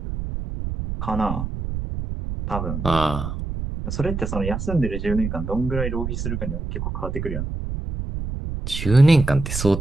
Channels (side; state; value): right; noise; rumble, 5 dB below the sound